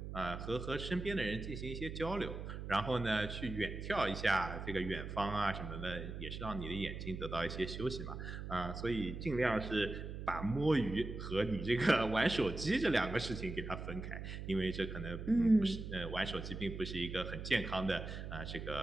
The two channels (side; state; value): right; noise; hum, 7 dB below the sound